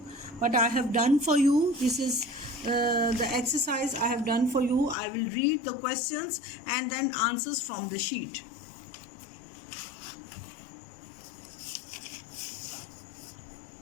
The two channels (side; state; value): right; drops out; at 5.0 s